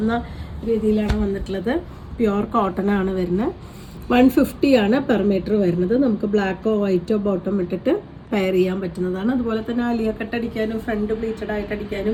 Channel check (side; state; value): both; identical; correlation 1.00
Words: രീതിയിലാണ് വന്നിട്ടുള്ളത്. പ്യുവർ കോട്ടൺ ആണ് വരുന്നത്. 150 ആണ് പെർ മീറ്റർ വരുന്നത്. നമുക്ക് ബ്ലാക്കോ വൈറ്റോ ബോട്ടം ഇട്ടിട്ട് പെയർ ചെയ്യാൻ പറ്റുന്നതാണ്. അതുപോലെ തന്നെ അലിയ കട്ട് അടിക്കാനും ഫ്രണ്ട് പ്ലീറ്റഡ് ആയിട്ട്